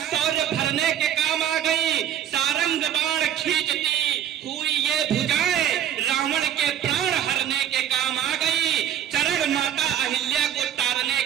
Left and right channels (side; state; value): left; quieter; 10.1 dB